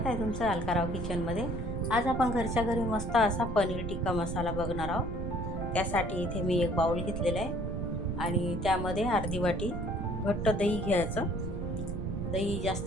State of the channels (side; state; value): right; noise; rumble, 4 dB below the sound